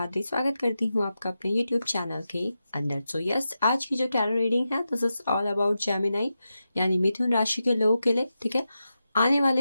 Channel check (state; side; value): inverted; both; correlation -0.90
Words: स्वागत करती हूँ आपका अपने यूट्यूब चैनल के अंदर। सो यस, आज की जो टैरो रीडिंग है this is all about Gemini यानी मिथुन राशि के लोगों के लिए। ठीक है, आने